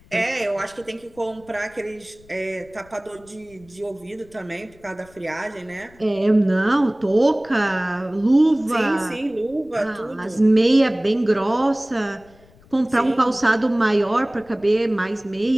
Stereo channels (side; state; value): left; noise; rumble, 27 dB below the sound